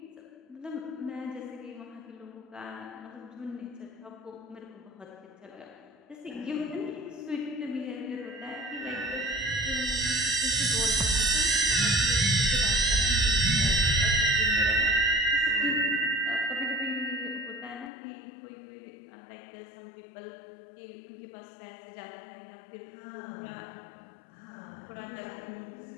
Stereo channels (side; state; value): right; drops out; at 17.9 s